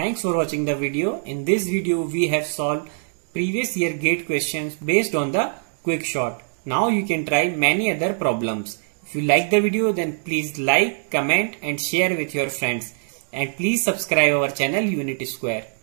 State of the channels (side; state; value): left; silent; digital silence